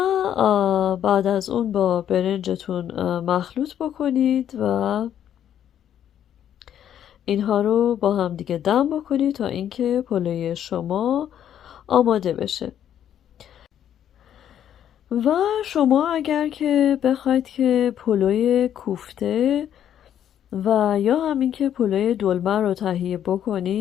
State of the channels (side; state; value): right; quieter; 10.1 dB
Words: بعد از اون با برنجتون مخلوط بکنید و اینها رو با هم دیگه دم بکنید تا اینکه پلوی شما آماده بشه. و شما اگر که بخواید که پلوی کوفته و یا همین که پلوی دلمه رو تهیه